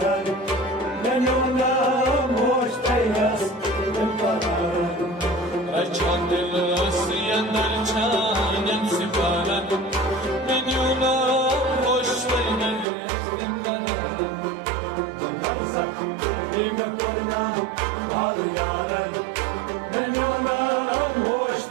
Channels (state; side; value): drops out; left; at 12.9 s